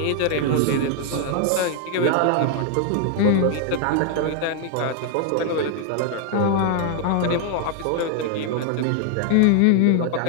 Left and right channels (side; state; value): both; different; correlation 0.00